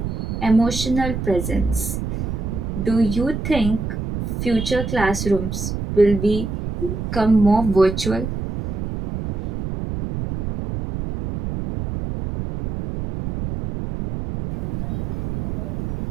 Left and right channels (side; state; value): right; noise; rumble, 4 dB below the sound